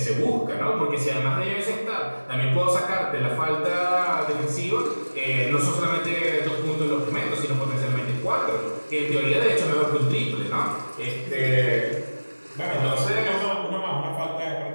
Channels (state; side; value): inverted; both; correlation -1.00